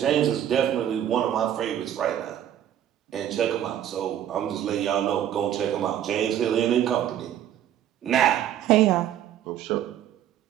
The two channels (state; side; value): quieter; left; 10.8 dB